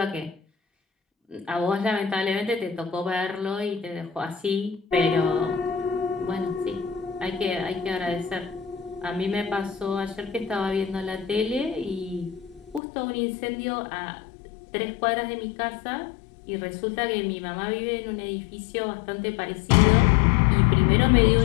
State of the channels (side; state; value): right; drops out; at 12.8 s